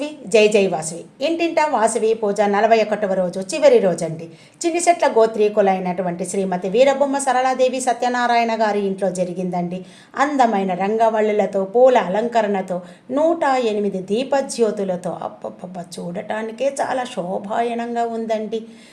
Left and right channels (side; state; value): both; identical; correlation 1.00